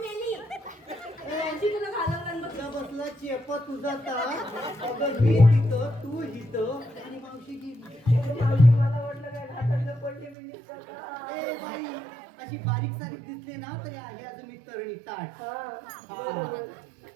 मावशी तुला घालवलं बघ. तुझा बसला चेप तुझा तास. अगं मी तिथं तू हिथं आणि मावशी गेली. मावशी मला वाटलं काय घाटातलं पडली बिंडीस करता. ए बाई अशी बारीक सारीक दिसली ना तरी आहे अजून मी तरणी ताट. हा हा.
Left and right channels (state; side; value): drops out; left; at 10.4 s